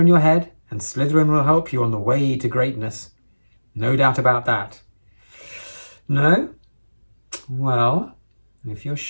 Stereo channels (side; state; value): both; inverted; correlation -1.00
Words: your head, and Slytherin will help you on the way to greatness. No doubt about that. No? Well, if you're